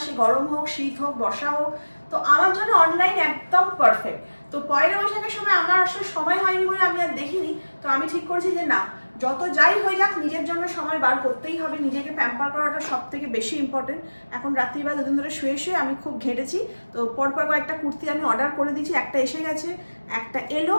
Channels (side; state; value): both; inverted; correlation -1.00